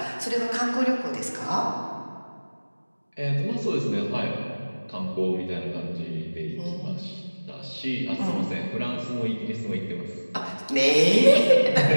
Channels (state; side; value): inverted; both; correlation -1.00